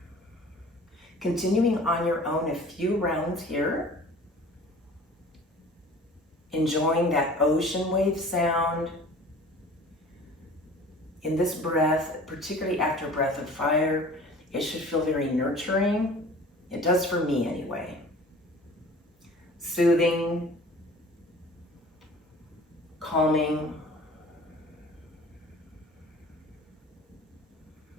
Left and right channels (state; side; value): normal; both; correlation 0.45